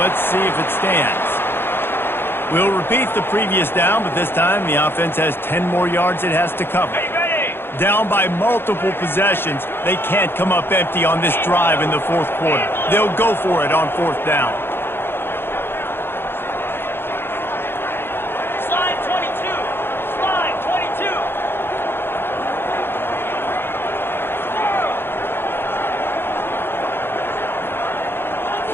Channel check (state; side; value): late; right; 0.11 ms